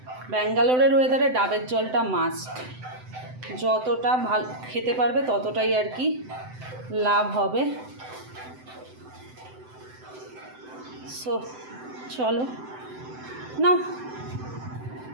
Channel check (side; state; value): left; late; 7.8 ms